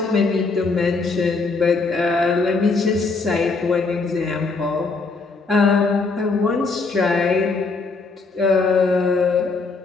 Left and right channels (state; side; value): quieter; right; 4.1 dB